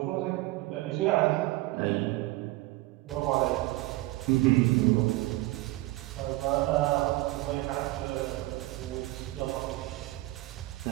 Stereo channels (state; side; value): quieter; left; 19.5 dB